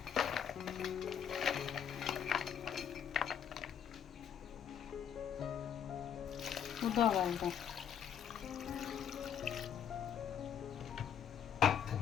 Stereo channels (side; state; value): right; quieter; 8.4 dB